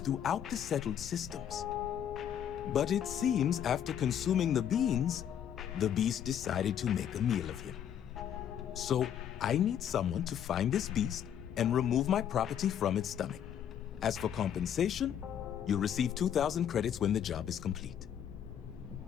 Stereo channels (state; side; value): quieter; right; 9.4 dB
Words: the settled systems. But it seems after consuming the beans, the beast decided to make a meal of him. So I need someone to find this beast and remove my property from its stomach. As for compensation, you'll receive 2,000 credits when the job is complete.